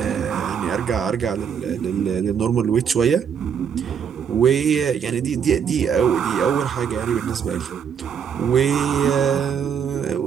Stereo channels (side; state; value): left; quieter; 7.5 dB